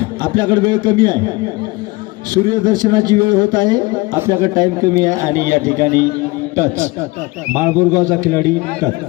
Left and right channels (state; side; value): quieter; right; 23.0 dB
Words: आपल्याकडे वेळ कमी आहे. सूर्यदर्शनाची वेळ होत आहे. आपल्याकडे टाइम कमी आहे आणि या ठिकाणी टच माळबुरगावचा खिलाडी टच